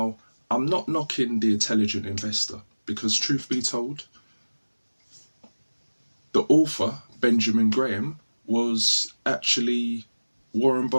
I'm not knocking The Intelligent Investor, because truth be told, the author, Benjamin Graham, was actually Warren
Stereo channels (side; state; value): both; inverted; correlation -1.00